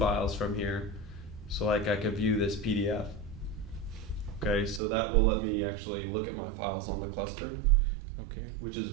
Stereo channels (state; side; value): drops out; left; at 4.8 s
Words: from here. So like I could view this PDF. Okay, so that will let me actually look at my files on the cluster. Okay. Which is